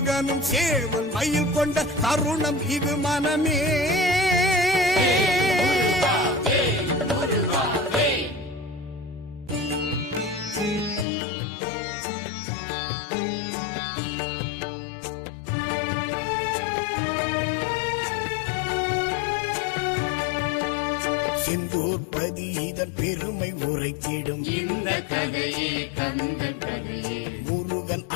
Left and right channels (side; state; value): right; drops out; at 11.1 s